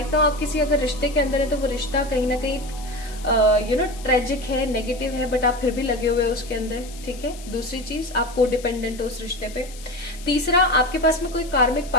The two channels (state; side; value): noise; left; hiss, 18 dB below the sound